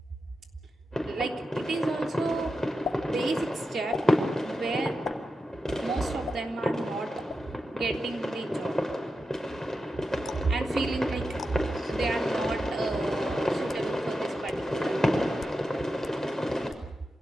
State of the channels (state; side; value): normal; both; correlation 0.90